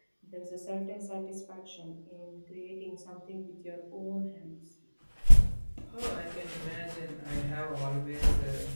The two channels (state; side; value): inverted; both; correlation -1.00